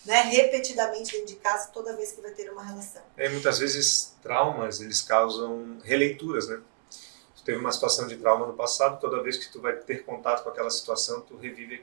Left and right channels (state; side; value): silent; left; digital silence